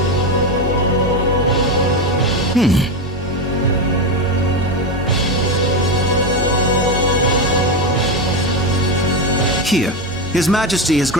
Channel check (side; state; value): both; normal; correlation 0.13